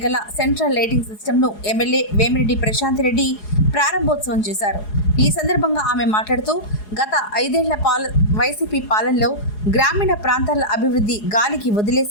గల సెంట్రల్ లైటింగ్ సిస్టమ్ను ఎమ్మెల్యే వేమిరెడ్డి ప్రశాంత్ రెడ్డి ప్రారంభోత్సవం చేశారు. ఈ సందర్భంగా ఆమె మాట్లాడుతూ గత 5 ఏళ్ల వైసీపీ పాలనలో గ్రామీణ ప్రాంతాల అభివృద్ధి గాలికి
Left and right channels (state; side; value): late; right; 4.8 ms